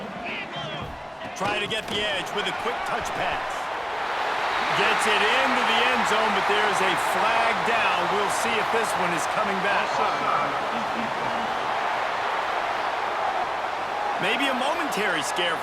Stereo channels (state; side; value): identical; both; correlation 1.00